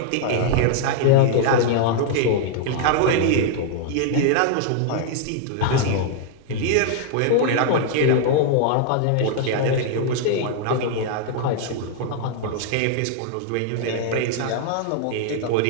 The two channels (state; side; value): different; both; correlation 0.00